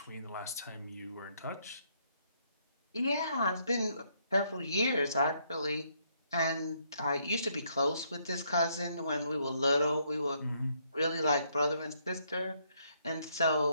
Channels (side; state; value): both; inverted; correlation -0.72